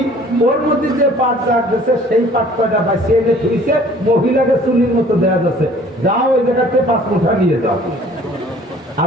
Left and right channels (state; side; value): normal; both; correlation 0.53